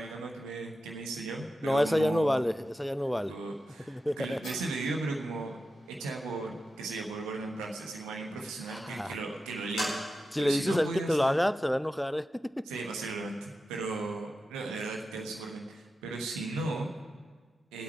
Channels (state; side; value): normal; both; correlation 0.91